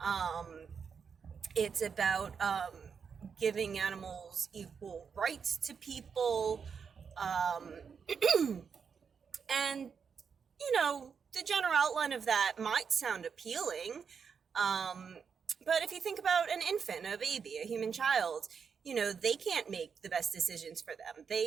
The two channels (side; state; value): left; quieter; 6.3 dB